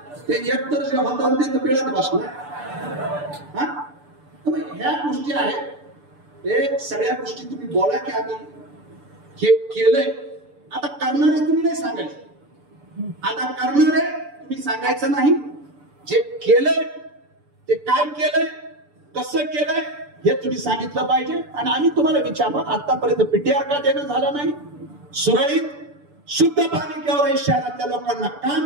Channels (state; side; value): late; left; 6.9 ms